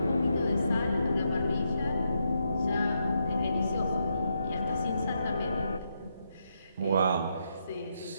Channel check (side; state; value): both; inverted; correlation -0.81